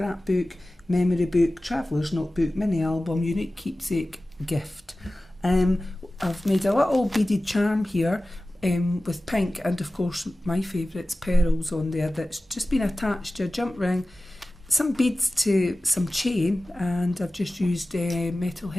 memory book, traveller's notebook, mini album, unique keepsake gift. I've made a little beaded charm here with pink, and of course my favourites, pearls on there, that's just been attached to a jump ring, some beads to some chain, and I've just used metal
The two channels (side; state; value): both; normal; correlation 0.96